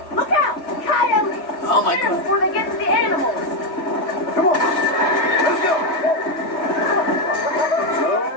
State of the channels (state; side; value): late; right; 3.2 ms